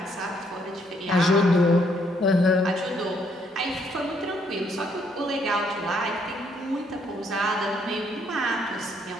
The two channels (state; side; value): normal; both; correlation 0.70